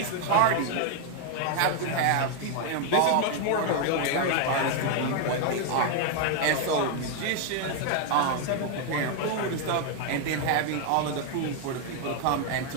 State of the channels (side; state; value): both; different; correlation 0.01